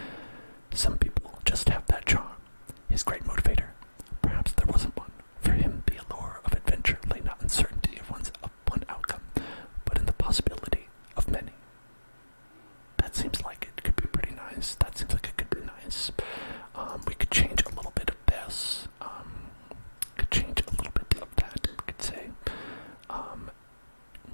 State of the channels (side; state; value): both; inverted; correlation -1.00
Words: Some people just have that charm. His great motivator. Perhaps there wasn't one. For him, the allure of adventure lay not in certainty of one outcome, but in the possibility of many. That seems like it could be pretty nice. That seems like it could be nice. We could change a little bit of this. Could change a little bit of that. We could say,